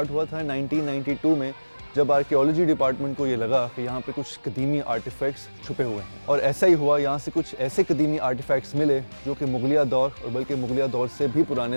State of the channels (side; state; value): both; inverted; correlation -1.00